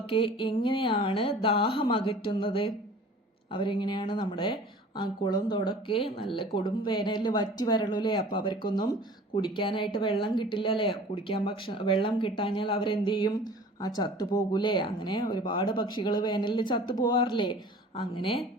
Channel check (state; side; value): normal; both; correlation 0.45